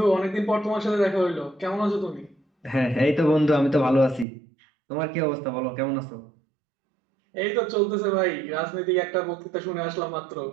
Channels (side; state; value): left; drops out; at 4.2 s